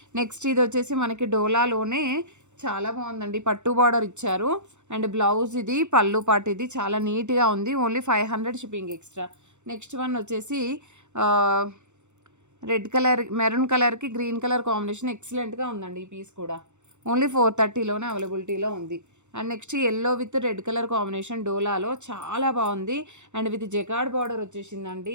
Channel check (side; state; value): left; late; 0.83 ms